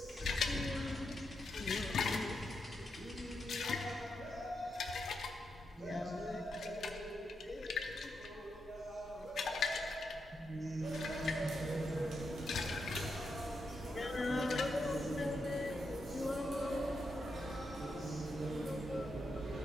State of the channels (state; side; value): normal; both; correlation 0.84